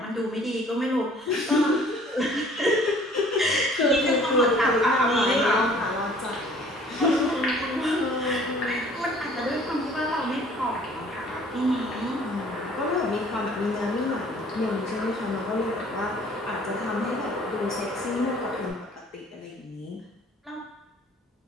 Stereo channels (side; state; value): both; normal; correlation 0.53